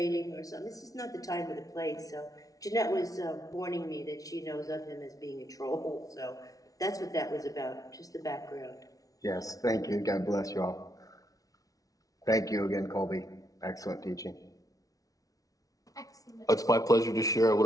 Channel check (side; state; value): right; late; 0.18 ms